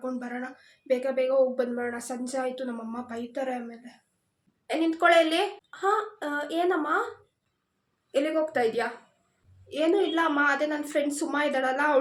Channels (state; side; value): identical; both; correlation 1.00